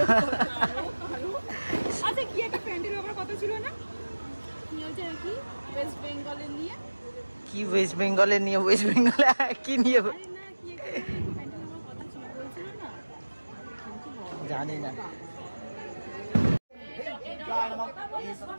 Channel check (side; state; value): both; inverted; correlation -1.00